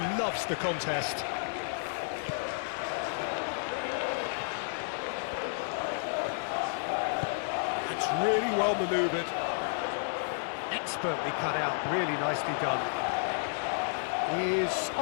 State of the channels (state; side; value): silent; right; digital silence